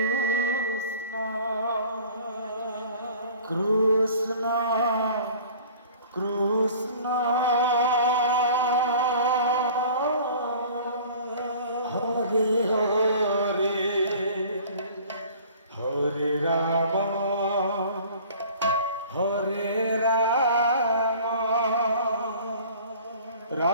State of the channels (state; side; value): inverted; both; correlation -0.47